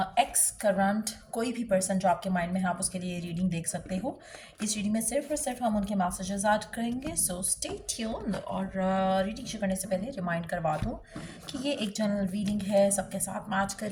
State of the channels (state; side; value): identical; both; correlation 1.00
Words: एक्स करंट कोई भी पर्सन जो आपके माइंड में है आप उसके लिए रीडिंग देख सकते हो। इस रीडिंग में सिर्फ और सिर्फ हम उनके मैसेजेस ऐड करेंगे, सो स्टे ट्यून्ड। और रीडिंग शुरू करने से पहले रिमाइंड करवा दूँ कि ये एक जनरल रीडिंग है, सबके साथ मैच कर